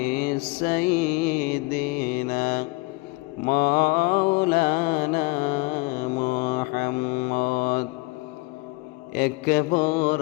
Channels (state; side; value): quieter; right; 25.6 dB